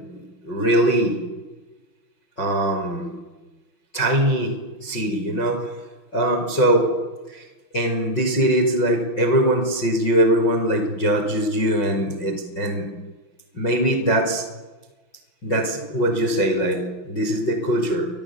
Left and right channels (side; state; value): right; late; 5.9 ms